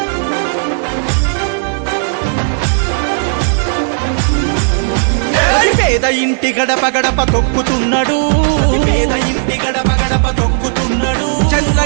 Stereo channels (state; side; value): silent; left; 66 dB below the other